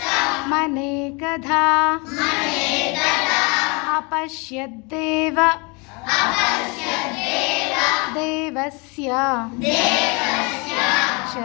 मनेकधा अपश्यद्देव देवस्य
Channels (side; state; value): right; quieter; 29.7 dB